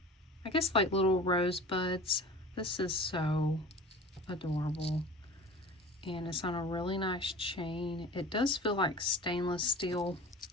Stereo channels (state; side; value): normal; both; correlation 0.39